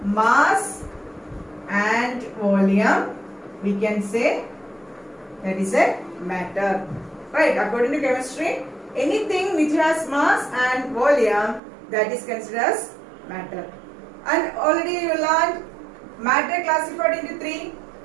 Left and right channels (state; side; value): drops out; left; at 11.6 s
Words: mass and volume, we can say that is a matter, right? According to chemistry, anything which has mass and volume, that is considered as matter. And already you learned matter classified into three: